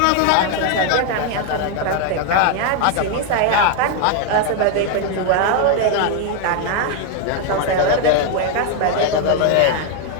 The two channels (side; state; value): both; different; correlation 0.00